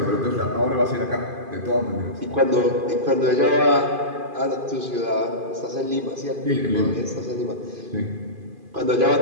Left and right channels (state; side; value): late; left; 2.5 ms